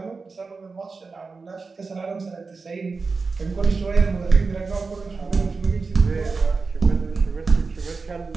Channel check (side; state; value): left; quieter; 4.4 dB